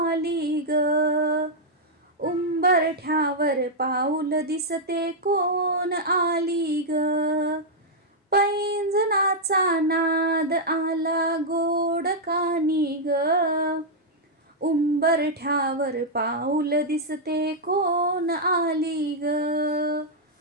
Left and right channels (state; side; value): normal; both; correlation -0.05